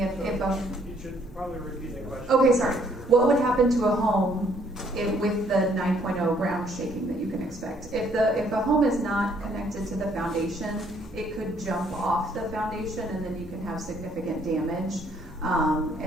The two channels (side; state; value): both; normal; correlation 0.65